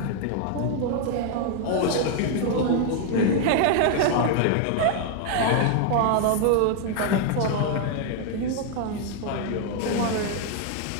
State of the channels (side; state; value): both; different; correlation 0.00